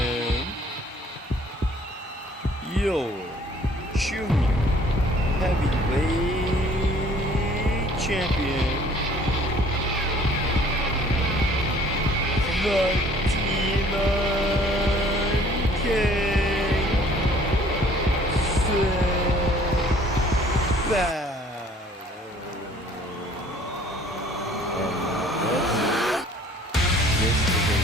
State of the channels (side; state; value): both; normal; correlation 0.55